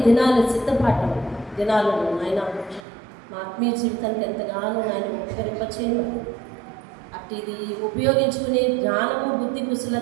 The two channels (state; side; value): drops out; left; at 2.8 s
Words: దినాల సిద్ధపాటు దినాలను ఆయన మా ఆత్మీయ జీవితానికి ఎంతగానో ఆయన ఉపకరింపచేయమని, అట్టిది ఉపయోగించుకునే జ్ఞానము బుద్ధి